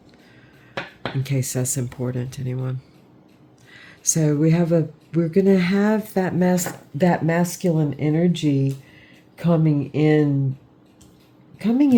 in case that's important to anyone. So we're gonna have that masculine energy coming in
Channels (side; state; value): both; identical; correlation 1.00